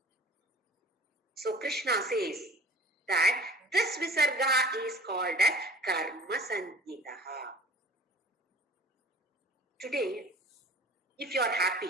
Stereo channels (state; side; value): normal; both; correlation 0.45